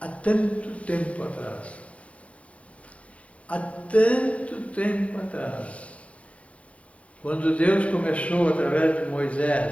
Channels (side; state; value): right; late; 0.064 ms